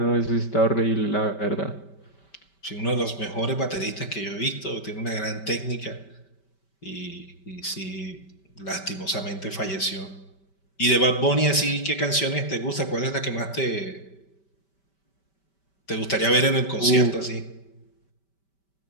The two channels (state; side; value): late; right; 5.2 ms